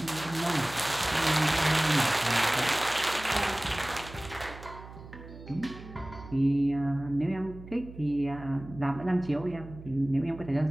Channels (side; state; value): right; noise; hum, 16 dB below the sound